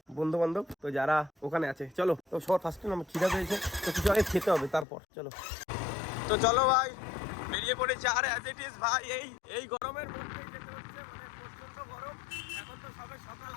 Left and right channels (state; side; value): drops out; right; at 4.9 s